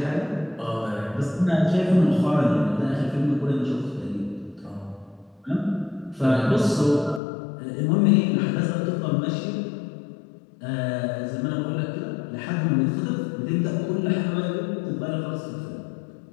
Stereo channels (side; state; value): right; drops out; at 7.2 s